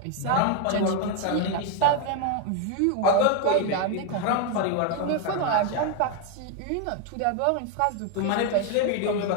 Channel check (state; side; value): different; both; correlation 0.01